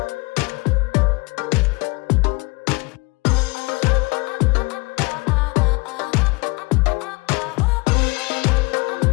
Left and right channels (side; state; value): right; quieter; 26.1 dB